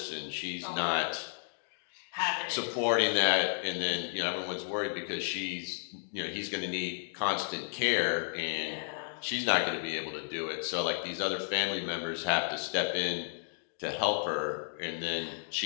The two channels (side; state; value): right; silent; digital silence